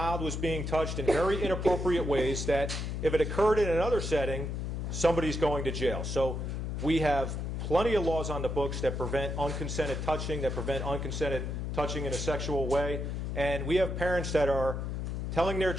was being touched in very inappropriate ways that if it occurred in another setting, somebody's going to jail. So we have plenty of laws on the books that prevent unconsented touching, that prevent unconsented touching in a sexual way. And we have parents that are telling their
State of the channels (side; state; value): left; noise; hum, 3 dB below the sound